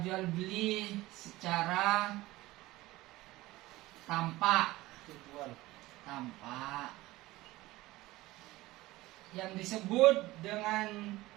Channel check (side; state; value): left; quieter; 18.5 dB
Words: jual beli secara tampak. Yang disebut dengan